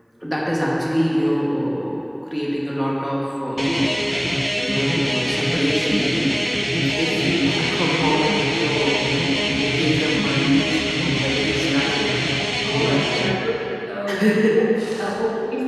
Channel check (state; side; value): identical; both; correlation 1.00